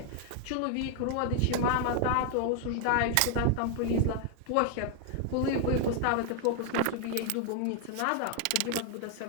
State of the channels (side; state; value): both; different; correlation 0.00